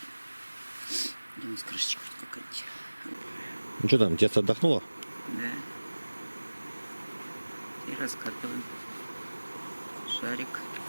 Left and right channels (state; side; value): inverted; both; correlation -1.00